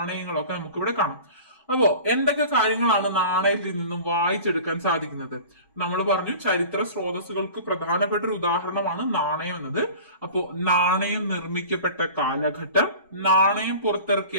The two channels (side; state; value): both; inverted; correlation -0.40